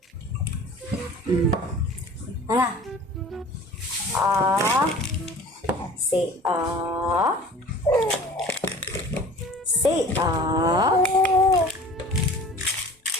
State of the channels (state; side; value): normal; both; correlation 0.44